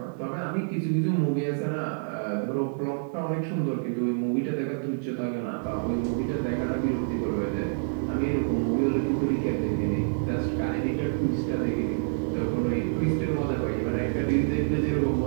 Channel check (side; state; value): left; silent; digital silence